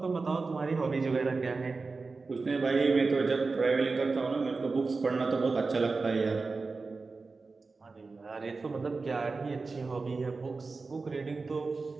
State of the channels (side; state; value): left; quieter; 4.0 dB